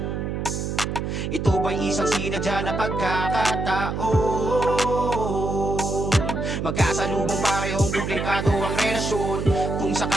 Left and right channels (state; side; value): noise; right; hum, 3 dB below the sound